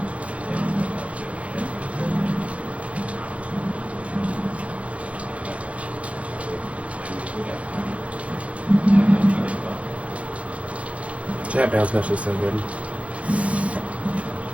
Jab bounce mesh is so good.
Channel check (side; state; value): left; late; 0.064 ms